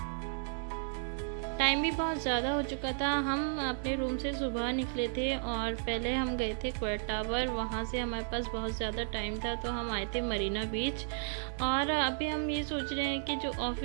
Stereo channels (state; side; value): silent; left; digital silence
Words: टाइम भी बहुत ज़्यादा हो चुका था। हम अपने रूम से सुबह निकले थे और पहले हम गए थे क्वार्ट टावर। वहाँ से हमारे पास बहुत ज़्यादा टाइम था तो हम आए थे मरीना बीच। और अभी हम ये सोच रहे हैं कि जो